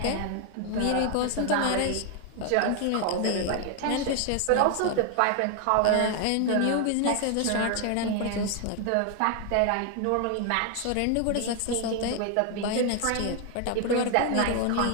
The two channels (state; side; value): different; both; correlation 0.00